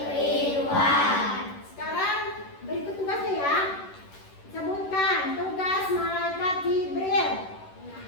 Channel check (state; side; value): late; right; 11 ms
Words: Sekarang berikut tugasnya ya. Sebutkan tugas malaikat Jibril.